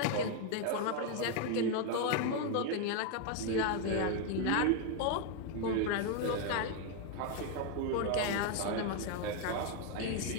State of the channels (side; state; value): both; different; correlation 0.01